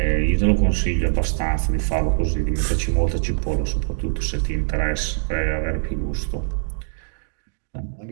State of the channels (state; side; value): silent; left; digital silence